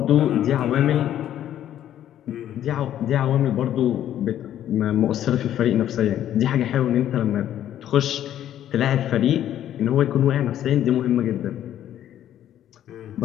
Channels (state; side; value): quieter; right; 11.4 dB